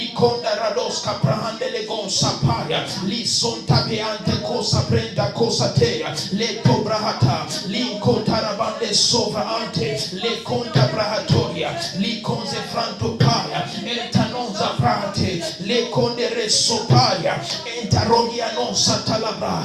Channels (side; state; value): both; identical; correlation 1.00